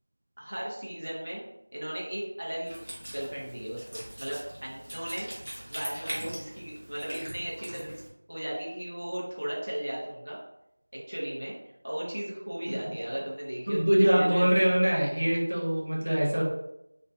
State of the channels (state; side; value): inverted; both; correlation -1.00